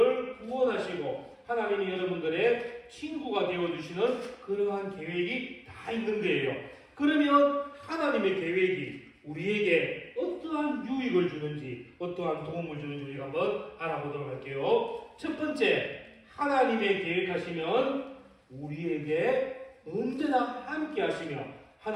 구원하시고 하나님이 여러분들의 친구가 되어주시는 그러한 계획이 다 있는 거예요. 그러면 하나님의 계획이 우리에게 어떠한 유익을 주는지 어떠한 도움을 주는지 우리가 한번 알아보도록 할게요. 첫 번째, 하나님의 계획하시면 우리에게 언제나 함께 하시며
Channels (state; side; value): identical; both; correlation 1.00